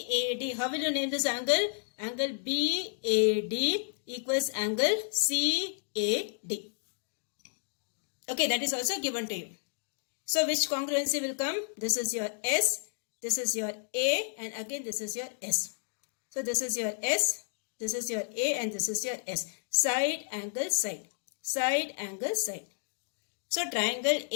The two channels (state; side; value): silent; right; digital silence